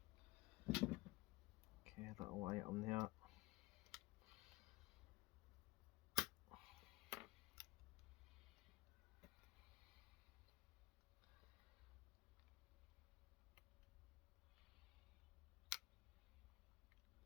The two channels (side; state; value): right; quieter; 19.7 dB